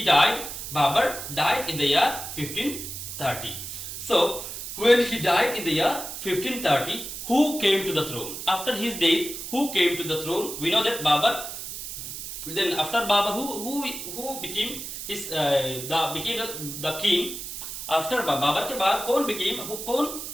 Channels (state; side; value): noise; right; hiss, 8 dB below the sound